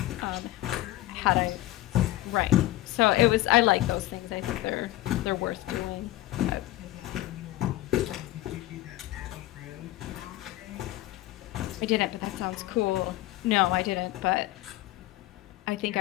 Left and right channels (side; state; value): right; quieter; 16.5 dB